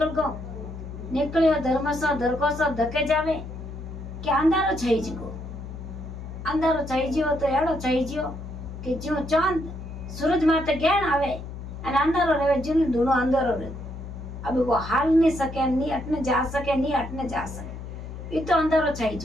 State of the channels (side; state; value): left; noise; hum, 10 dB below the sound